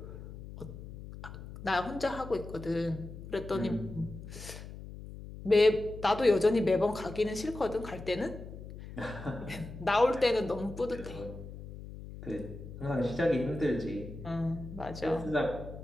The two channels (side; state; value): left; noise; hum, 12 dB below the sound